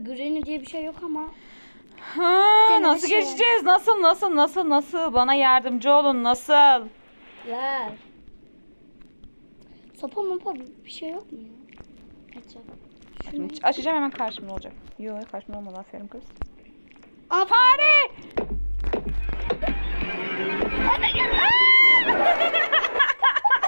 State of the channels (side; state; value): both; inverted; correlation -1.00